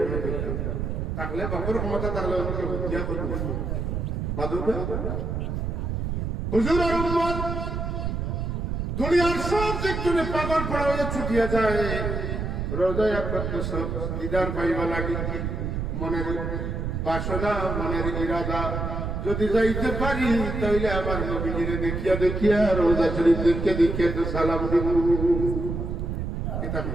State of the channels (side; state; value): right; noise; rumble, 2 dB below the sound